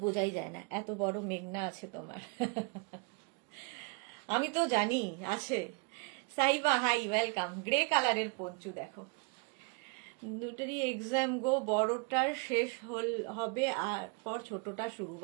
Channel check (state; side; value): quieter; left; 34.4 dB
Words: বোঝাই যায় না, এত বড় মেঘনা আছে তোমার। আমি তো জানি আছে। Saiba high, welcome. গ্রে কালারের পঞ্চু দেখো, দুটোরই এক্সাম গো, বড়টার শেষ হবে আর পর ছোটটা শুরু।